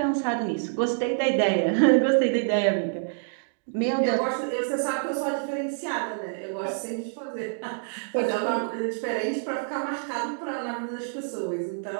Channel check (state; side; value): silent; left; digital silence